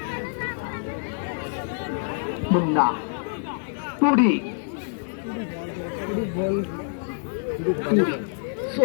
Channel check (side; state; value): right; silent; digital silence